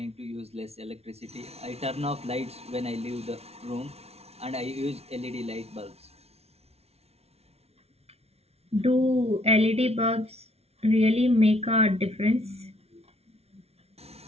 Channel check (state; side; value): late; left; 0.30 ms